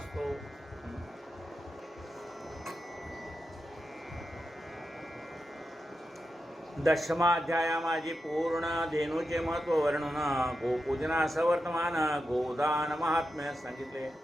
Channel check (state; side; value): normal; both; correlation 0.88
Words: दशमा अध्याया माझी पूर्ण धेनूचे महत्त्व वर्णन, गोपूजनाचं वर्तमान, गोदान महात्म्य सांगितले.